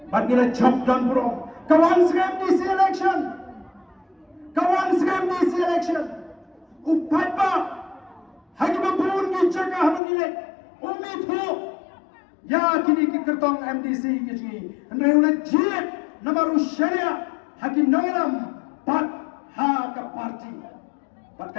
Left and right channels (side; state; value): right; drops out; at 10.0 s